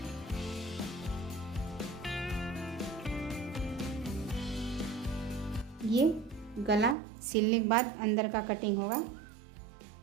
ये गला सिलने के बाद अंदर का कटिंग होगा।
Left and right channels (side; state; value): left; drops out; at 7.0 s